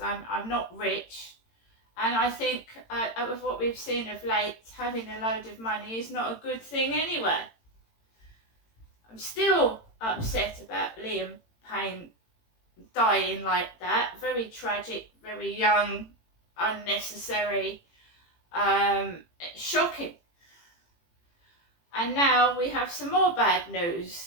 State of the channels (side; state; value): right; late; 18 ms